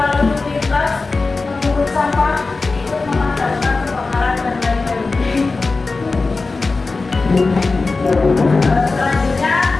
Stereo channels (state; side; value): quieter; right; 3.8 dB